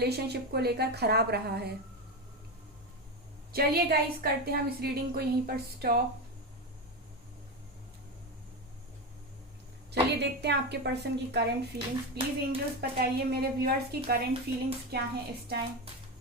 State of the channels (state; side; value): normal; both; correlation 0.16